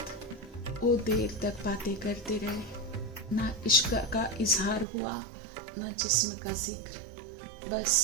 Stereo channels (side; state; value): left; drops out; at 4.9 s